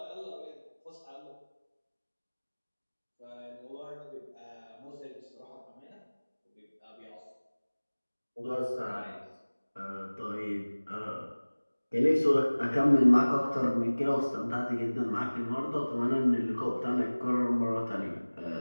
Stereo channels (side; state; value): both; inverted; correlation -1.00